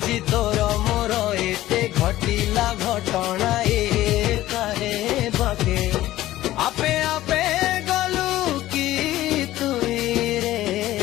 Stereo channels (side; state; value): right; quieter; 15.2 dB